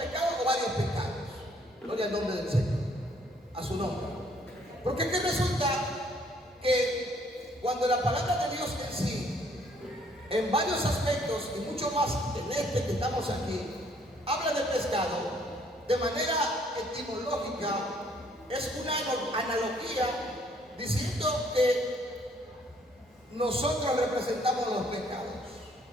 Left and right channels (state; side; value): normal; both; correlation 0.64